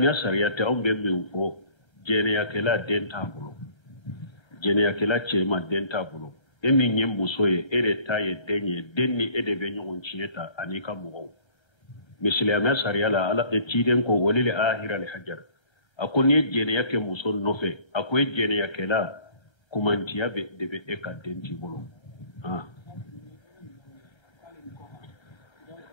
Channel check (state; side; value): late; right; 1.3 ms